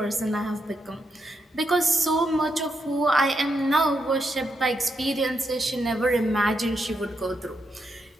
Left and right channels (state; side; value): normal; both; correlation 0.82